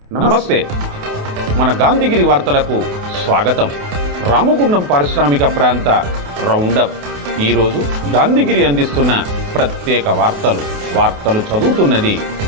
నమస్తే. మన గాంధీగిరి వార్తలకు స్వాగతం. రామగుండం పారిశ్రామిక ప్రాంత రౌండప్. ఈరోజు గాంధీగిరి అందిస్తున్న ప్రత్యేక వార్తలు చదువుతున్నది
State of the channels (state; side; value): late; left; 28 ms